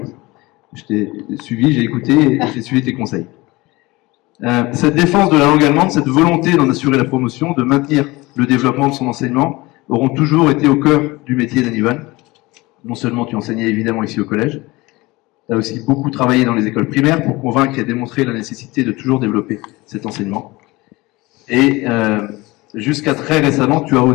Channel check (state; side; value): quieter; right; 21.7 dB